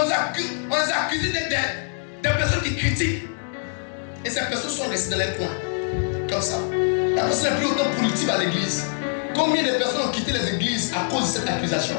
les a accusés d'être des personnes qui critiquent. Et ces personnes sont restées dans les coins. Comme ça. La personne n'est plus autant politique à l'église. Combien de personnes ont quitté les églises à cause de cette accusation?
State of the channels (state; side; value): silent; right; 59 dB below the other